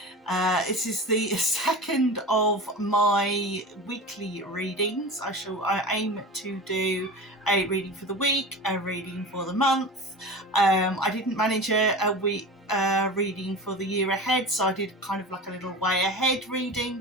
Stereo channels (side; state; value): both; normal; correlation 0.32